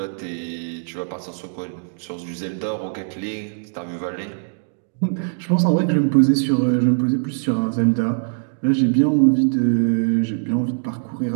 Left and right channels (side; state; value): left; silent; digital silence